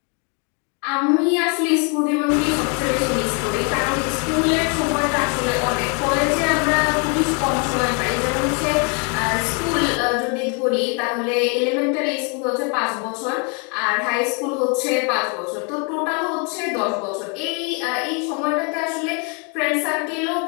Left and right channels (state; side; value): quieter; right; 35.8 dB